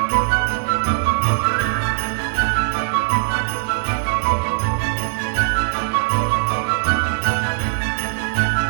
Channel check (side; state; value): left; silent; digital silence